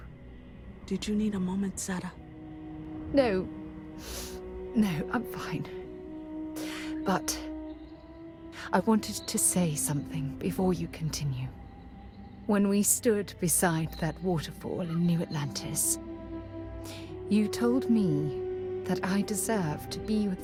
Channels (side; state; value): both; identical; correlation 1.00